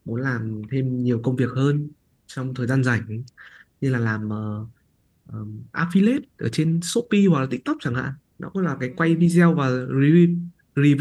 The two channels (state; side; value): identical; both; correlation 1.00